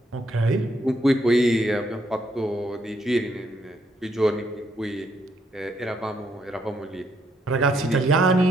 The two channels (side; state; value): both; normal; correlation 0.73